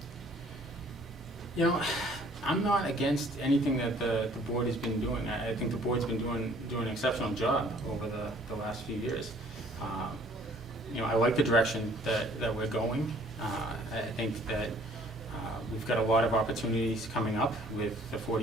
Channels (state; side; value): normal; both; correlation 0.57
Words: I'm not against anything that the board has been doing. I think the board's been doing an exceptional job over the last few years. I like the direction that we're going. I think that we've got a lot of opportunities coming up with the